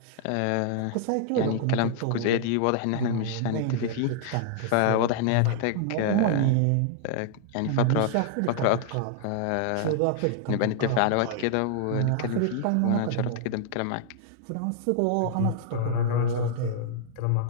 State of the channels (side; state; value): both; different; correlation -0.01